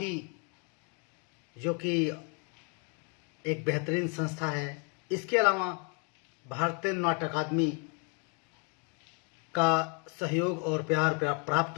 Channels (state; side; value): quieter; right; 36.8 dB